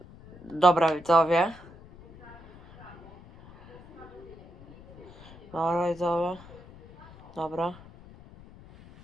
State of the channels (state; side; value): noise; left; rumble, 20 dB below the sound